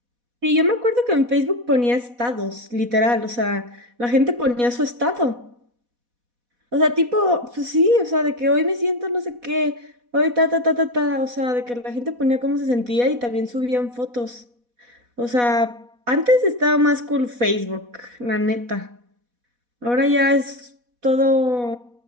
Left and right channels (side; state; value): left; late; 4.1 ms